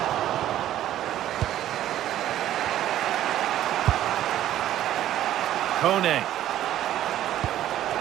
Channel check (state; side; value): quieter; left; 12.5 dB